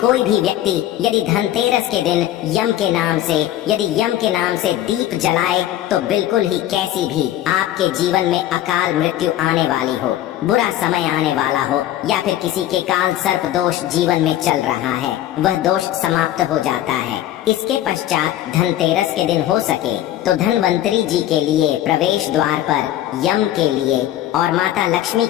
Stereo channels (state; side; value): quieter; right; 13.0 dB